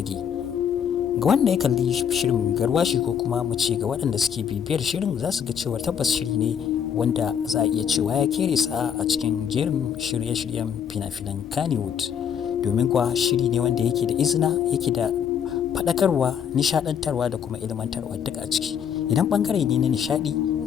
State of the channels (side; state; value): right; quieter; 8.1 dB